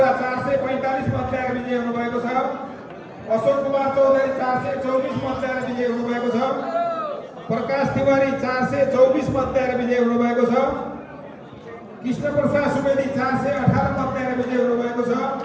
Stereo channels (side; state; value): both; identical; correlation 1.00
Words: 445 मत ल्याएर विजय हुनुभएको छ। अशोक कुमार चौधरी 424 मत ल्याएर विजय हुनुभएको छ। प्रकाश तिवारी 424 मत ल्याएर विजय हुनुभएको छ। कृष्ण प्रसाद सुवेदी 418 मत ल्याएर विजय हुनुभएको छ।